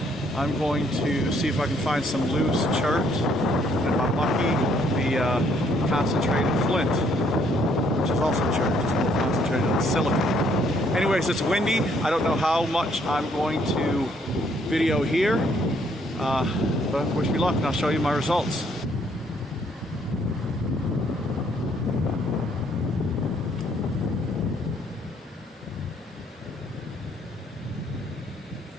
I'm going to see if I can find some loose chert, and if I'm lucky, the concentrated flint, which is also chert, just a little concentrated on silica. Anyways, it's windy. I don't know how much I'm going to video here, but wish me luck and I'll show you my results.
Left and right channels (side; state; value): both; normal; correlation 0.67